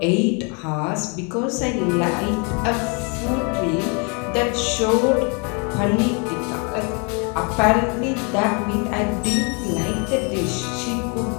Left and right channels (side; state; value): right; quieter; 34.1 dB